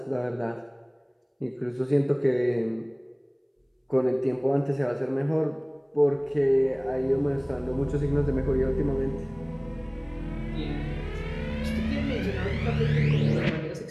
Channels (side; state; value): both; identical; correlation 1.00